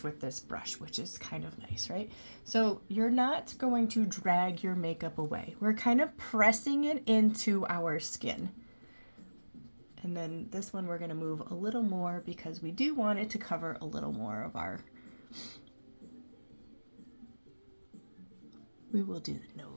with this brush, which is kind of nice, right? So you're not going to drag your makeup away. We're kind of pressing it into our skin. And then this one we're going to move a little more because we do want it to cover a little more of our... We will do the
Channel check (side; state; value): both; inverted; correlation -1.00